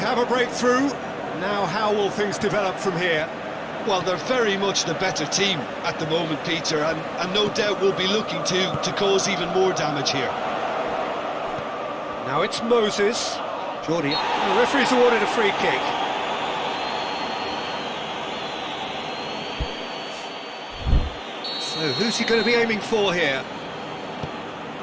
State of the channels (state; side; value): identical; both; correlation 1.00